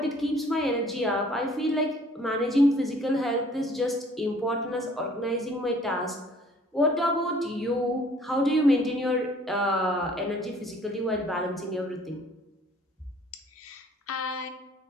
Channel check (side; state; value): both; normal; correlation 0.56